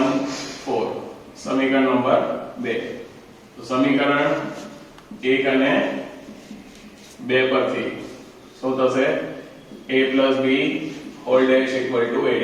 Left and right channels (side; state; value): both; identical; correlation 1.00